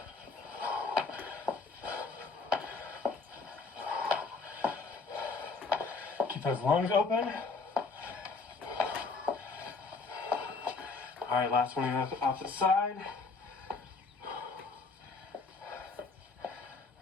Keep those lungs open. All right, last one on the opposite side.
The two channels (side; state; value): right; quieter; 4.3 dB